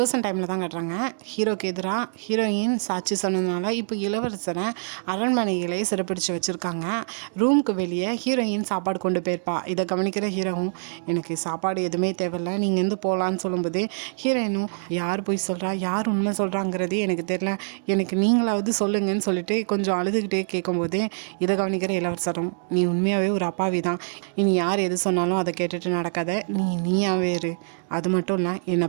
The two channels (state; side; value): silent; left; digital silence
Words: டைமில் தான் காட்டுறாங்க. ஹீரோக்கு எதிராக ஹீரோயின் சாட்சி சொன்னதுனால இப்போ இளவரசரை அரண்மனைகளே சிறப்பிடிச்சு வச்சுருக்காங்க. ரூமுக்கு வெளியே ஹீரோயின் சாப்பாடு கொண்டு போயிருப்பா. இதை கவனிக்கிற ஹீரோவும் எனக்கு சாப்பாடு எதுவுமே தேவையில்லை, நீங்கள் எந்த போகலான்னு சொல்லும்போது ஹீரோயினும் யார் போய் சொல்கிறா, யார் உண்மை சொல்கிறாங்கிறதே எனக்கு தெரியல, எனக்கு நீங்களாவது சொல்லுங்கன்னு சொல்லிட்டு கொஞ்சம் அழுதுகிட்டே கேட்கும்போது இதை கவனிக்கிற இளவரசரும் நீ உண்மையாகவே ஒரு அப்பாவி தான், இனி யார் எது சொன்னாலும் அதை கேட்டுட்டு நடக்காத, நீயாவே இரு, அது மட்டும் இல்லை என்னை